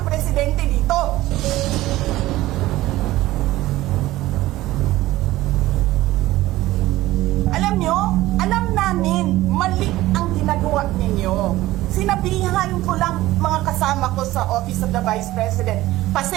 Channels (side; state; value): left; quieter; 16.7 dB